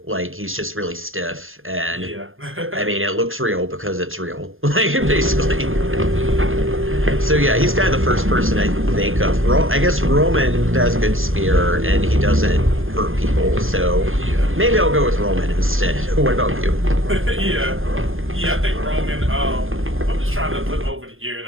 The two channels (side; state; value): left; late; 0.59 ms